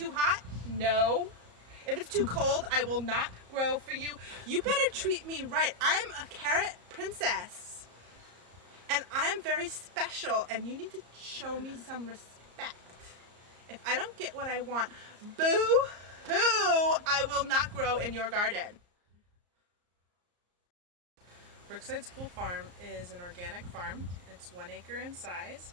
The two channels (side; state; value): left; late; 34 ms